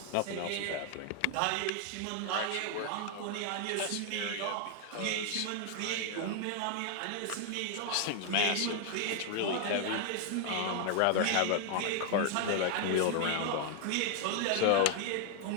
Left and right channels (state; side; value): different; both; correlation 0.00